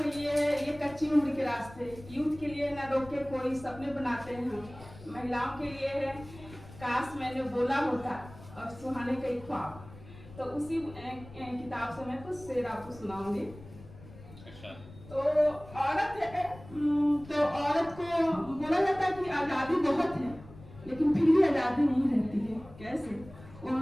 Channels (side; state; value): left; noise; rumble, 18 dB below the sound